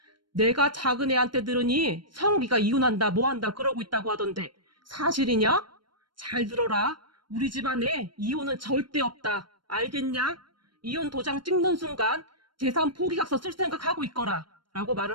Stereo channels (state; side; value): late; left; 0.72 ms